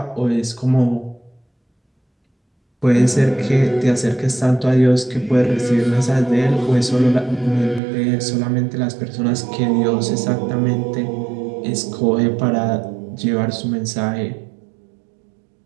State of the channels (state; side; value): drops out; left; at 7.8 s